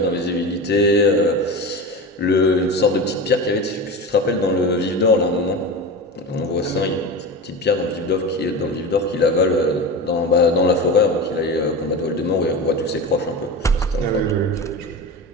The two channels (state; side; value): normal; both; correlation 0.27